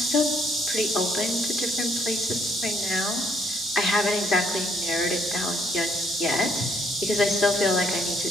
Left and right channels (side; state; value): both; normal; correlation 0.68